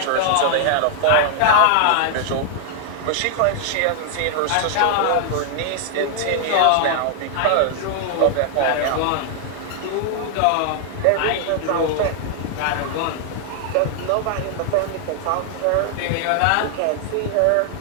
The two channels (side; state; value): both; different; correlation 0.00